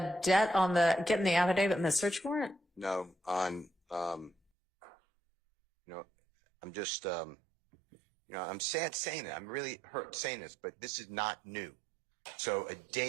debt, on the getting the affidavit and the search warrant? No, on, I'm just, I'm sad saying it. I'm really hurt saying this, but this is not new. So a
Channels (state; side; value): drops out; left; at 4.4 s